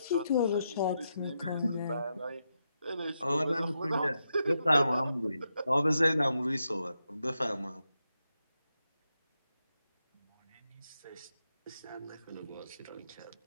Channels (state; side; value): inverted; both; correlation -0.85